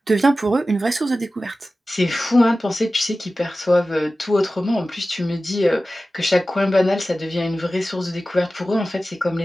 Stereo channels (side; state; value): both; normal; correlation 0.95